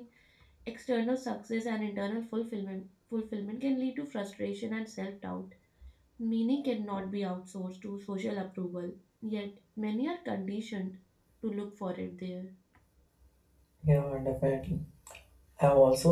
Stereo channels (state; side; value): identical; both; correlation 1.00